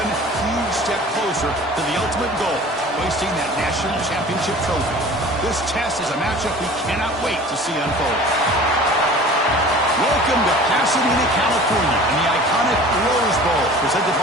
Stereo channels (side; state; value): both; normal; correlation 0.43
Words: huge step closer to the ultimate goal, hoisting that national championship trophy. This test is a matchup we cannot wait to see unfold. Welcome to Pasadena, California, and the iconic Rose Bowl, presented